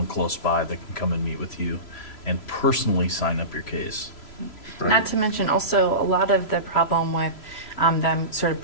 close by that can come and meet with you and personally sign up your case. Right. Not to mention also a lot of the problem with them sort of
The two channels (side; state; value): right; late; 3.0 ms